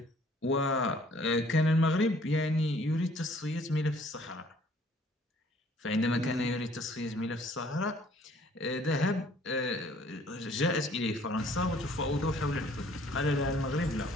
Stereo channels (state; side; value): normal; both; correlation 0.58